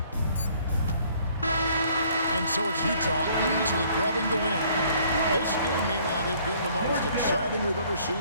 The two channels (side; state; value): both; inverted; correlation -0.60